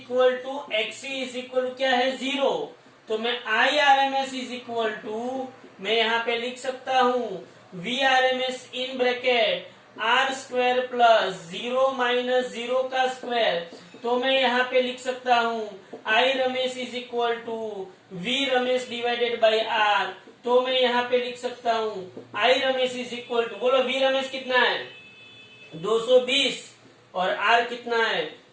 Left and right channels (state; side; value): identical; both; correlation 1.00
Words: to XC is equal to क्या है 0। तो मैं I RMS is equal to, मैं यहाँ पे लिख सकता हूँ V RMS in bracket R square plus 0 minus 0 का स्क्वायर। तो मैं यहाँ पे लिख सकता हूँ I RMS is equal to V RMS divided by R. तो मैं यहाँ पे लिख सकता हूँ I RMS is equal to, बोलो वी रमेश कितना है 220 और आर कितना है